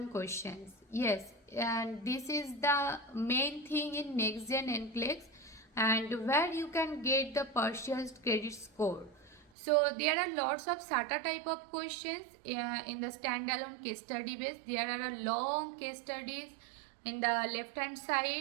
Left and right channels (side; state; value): left; drops out; at 9.5 s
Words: questions. Yes, and this is the main thing in Next Gen NCLEX, and where you can get the partial credit score. So there are lots of SATA type of questions in the standalone case study base. There are a long case studies in the left hand